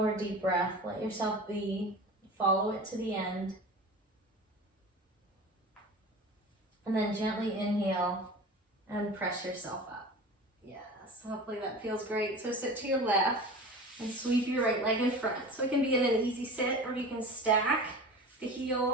deep breath. Let yourself be. Follow it to the end. And then gently inhale and press yourself up. Yes, hopefully that feels great. So sit to your left. And sweep your right leg in front. So it can be in an easy sit, or you can stack the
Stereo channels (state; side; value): normal; both; correlation 0.35